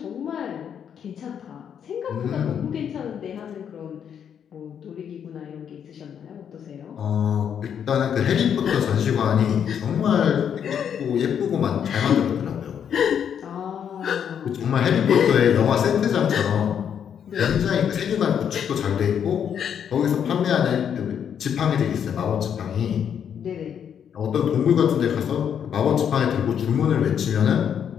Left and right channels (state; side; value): quieter; right; 8.3 dB